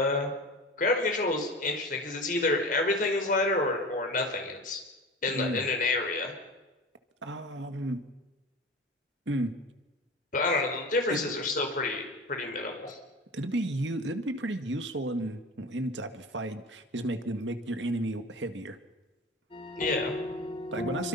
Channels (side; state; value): both; normal; correlation 0.33